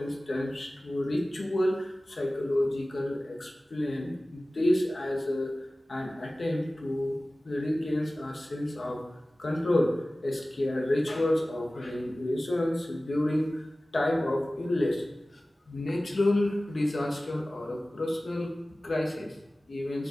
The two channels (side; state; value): both; normal; correlation 0.97